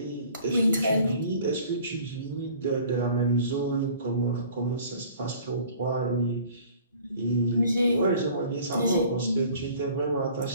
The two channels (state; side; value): inverted; both; correlation -0.50